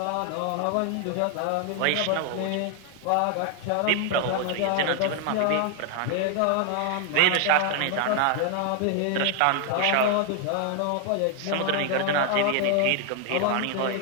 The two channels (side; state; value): both; different; correlation 0.00